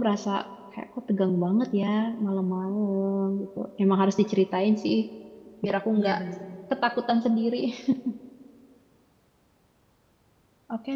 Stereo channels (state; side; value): identical; both; correlation 1.00